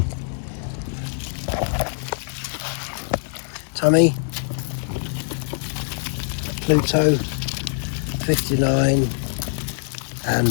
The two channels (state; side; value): silent; right; digital silence